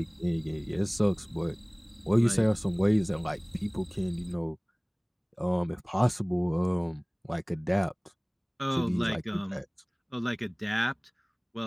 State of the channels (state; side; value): identical; both; correlation 1.00